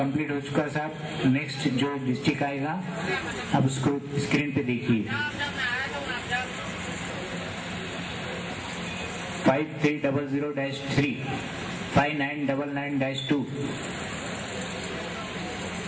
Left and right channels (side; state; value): both; identical; correlation 1.00